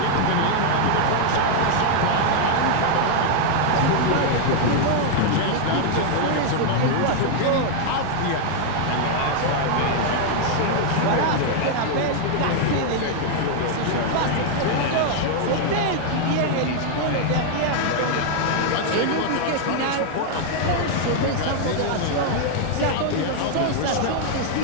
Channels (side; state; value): both; different; correlation 0.00